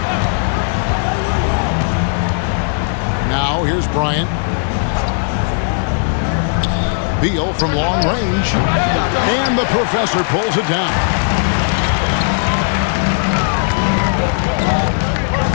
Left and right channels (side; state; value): right; silent; digital silence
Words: Now here's Bryant. Beal from long range. And the professor pulls it down.